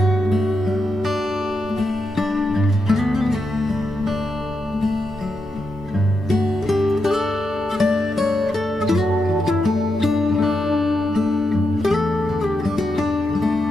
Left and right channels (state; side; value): normal; both; correlation 0.85